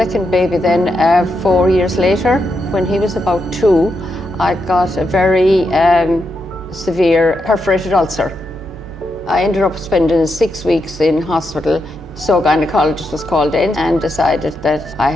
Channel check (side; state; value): both; normal; correlation 0.83